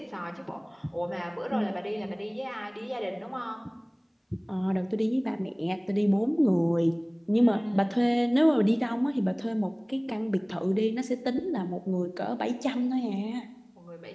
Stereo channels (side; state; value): both; identical; correlation 1.00